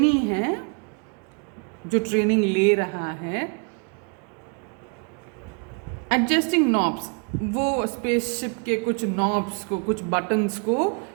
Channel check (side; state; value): left; quieter; 37.9 dB